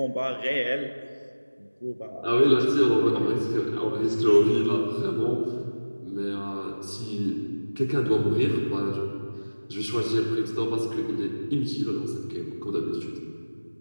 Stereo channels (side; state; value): both; inverted; correlation -1.00